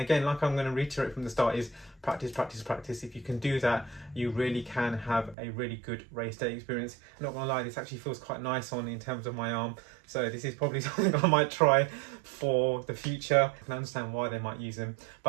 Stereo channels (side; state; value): left; drops out; at 5.4 s